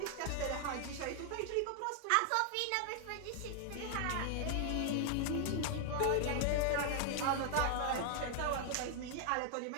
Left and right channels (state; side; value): different; both; correlation 0.00